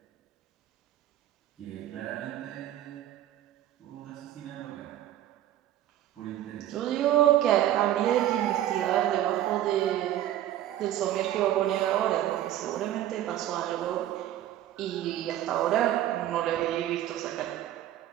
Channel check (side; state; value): left; quieter; 12.6 dB